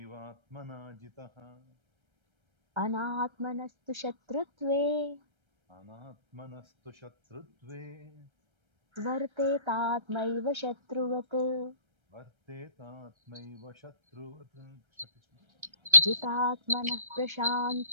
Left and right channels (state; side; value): late; left; 1.3 ms